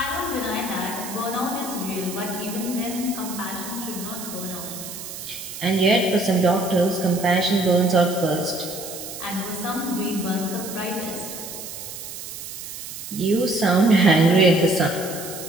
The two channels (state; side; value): noise; right; hiss, 10 dB below the sound